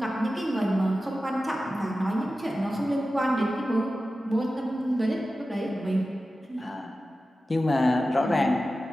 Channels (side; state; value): both; normal; correlation 0.94